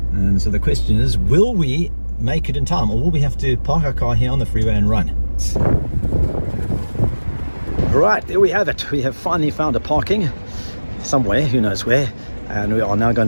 And so the question is, will we make it in time, or will we have to park our car here on the freeway and run? Right, there we have it. We have finally found a parking somewhere, who knows where, and we are now going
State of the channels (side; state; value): both; inverted; correlation -1.00